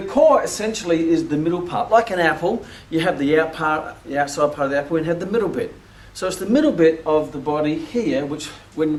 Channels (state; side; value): identical; both; correlation 1.00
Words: core essentially is the middle part. Like an apple, you have the outside part of the apple, and you have the middle bit. So it's the middle bit of the body here, which when